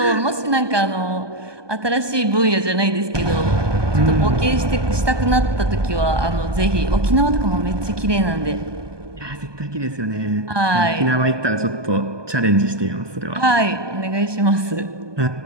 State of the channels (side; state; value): left; late; 1.2 ms